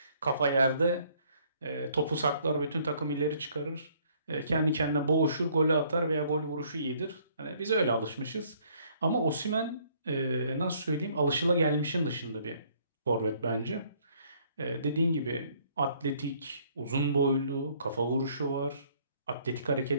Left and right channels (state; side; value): inverted; both; correlation -0.63